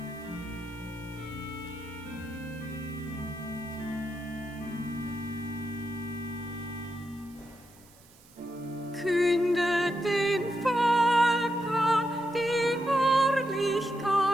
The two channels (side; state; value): right; noise; hiss, 26 dB below the sound